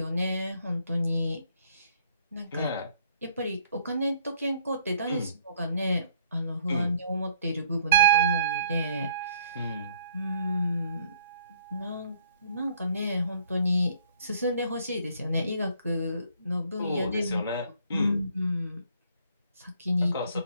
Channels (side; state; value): both; inverted; correlation -0.62